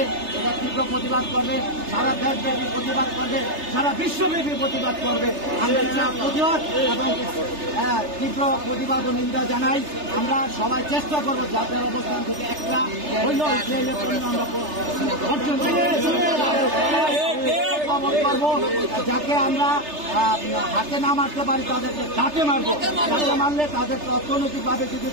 এটা তীব্র প্রতিবাদ করবে, সারা দেশব্যাপী প্রতিবাদ করবে, সারা বিশ্বব্যাপী প্রতিবাদ করবে। আমরা এটা প্রতিবাদ এবং তীব্র প্রতিবাদ ও নিন্দা জানাই। আমরা সবাই চেষ্টা করবো যাদের অবস্থান থেকে একটা হইল ইসরায়েলের পণ্য আমরা বর্জন করবো, যাকে আমরা হাতে না মারতে পারি তাদেরকে ঘাটে মারবো। ঘাটে মারলে তাদেরকে অর্থনৈতিকভাবে যদি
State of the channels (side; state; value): left; late; 3.3 ms